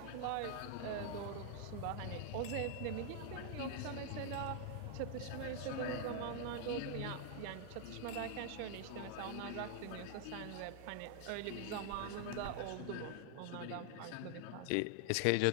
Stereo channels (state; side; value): different; both; correlation 0.00